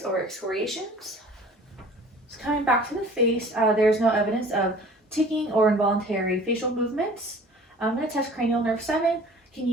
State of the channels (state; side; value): normal; both; correlation 0.47